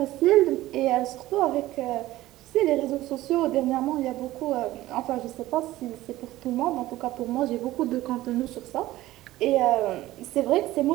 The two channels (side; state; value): left; quieter; 16.3 dB